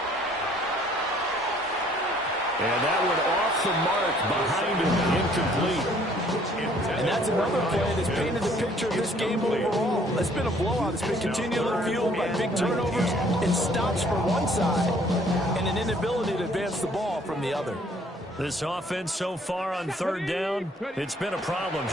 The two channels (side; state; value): both; normal; correlation 0.60